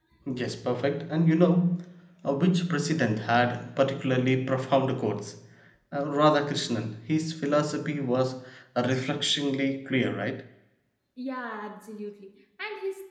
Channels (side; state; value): both; identical; correlation 1.00